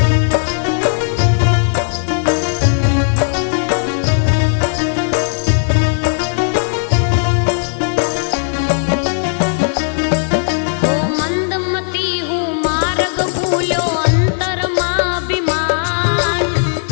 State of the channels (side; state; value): right; silent; digital silence